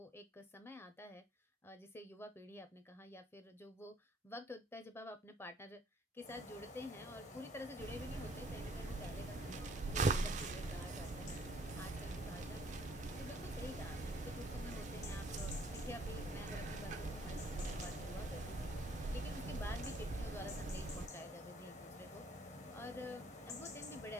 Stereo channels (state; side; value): normal; both; correlation 0.62